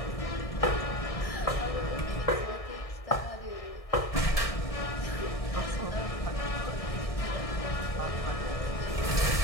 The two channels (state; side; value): late; right; 1.6 ms